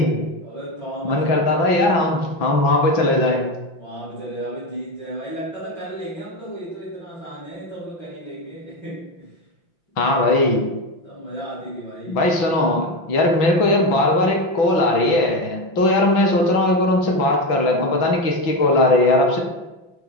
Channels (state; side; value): late; right; 5.9 ms